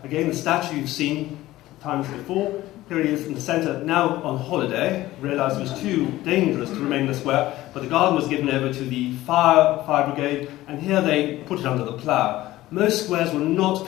again the statue you've seen times before. Here he is in the centre, now on holiday, realised it was too dangerous to remain in the square, but the garden was given over to the fire brigade, and here they put it under the plough. Most squares were not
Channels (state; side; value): quieter; right; 16.3 dB